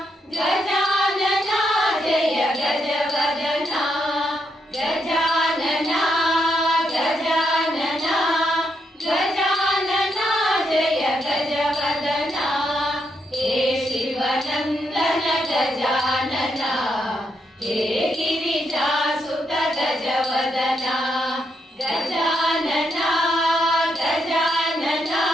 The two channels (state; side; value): normal; both; correlation 0.79